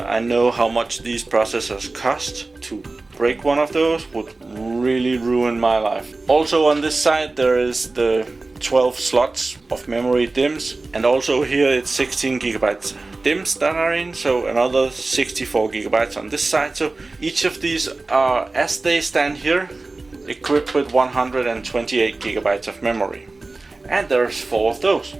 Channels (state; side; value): quieter; left; 3.4 dB